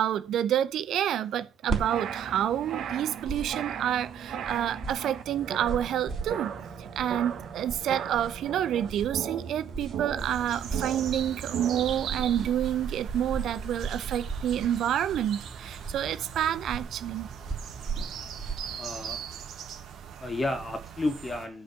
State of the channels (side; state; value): left; quieter; 8.2 dB